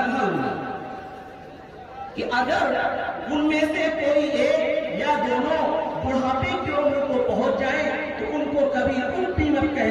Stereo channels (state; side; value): identical; both; correlation 1.00